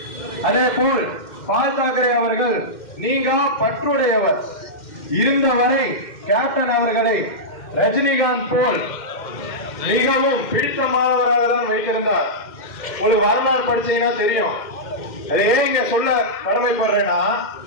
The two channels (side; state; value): right; late; 2.1 ms